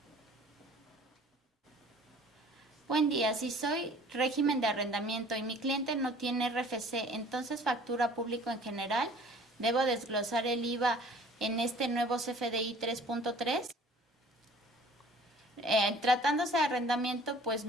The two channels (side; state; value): both; normal; correlation 0.50